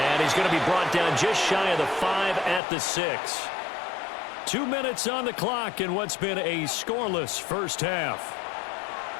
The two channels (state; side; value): drops out; right; at 2.6 s